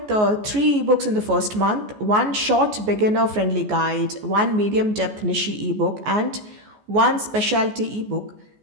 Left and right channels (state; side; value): late; left; 14 ms